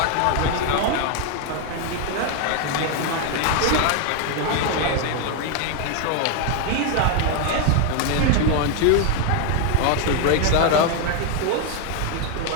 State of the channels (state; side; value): different; both; correlation 0.01